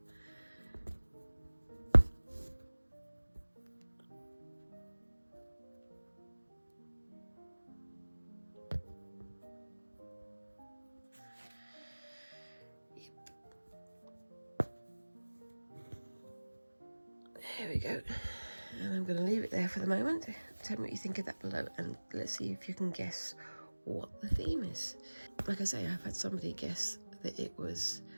There we go, and I'm going to leave it there for the moment. Tell me what you think of that below, and let's see if you can guess what the theme is. Like I say, I've had somebody guess that it was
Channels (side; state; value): both; inverted; correlation -1.00